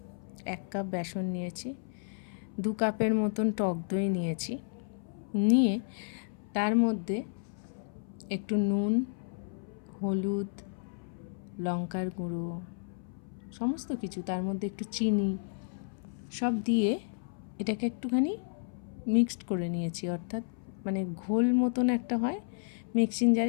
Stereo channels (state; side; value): silent; right; 56 dB below the other